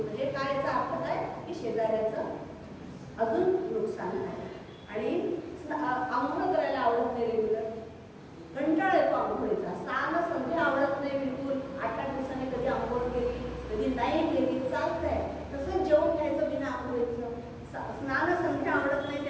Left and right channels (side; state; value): both; identical; correlation 1.00